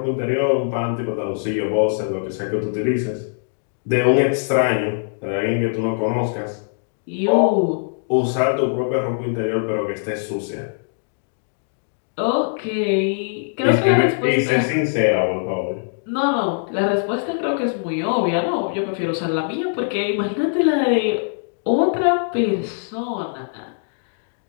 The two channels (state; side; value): silent; right; digital silence